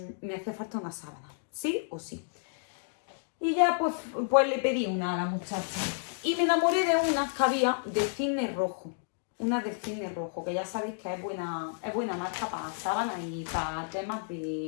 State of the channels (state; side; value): silent; right; digital silence